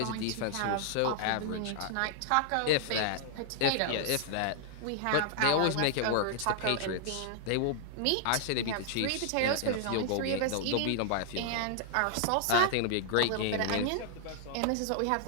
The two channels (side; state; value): both; different; correlation -0.01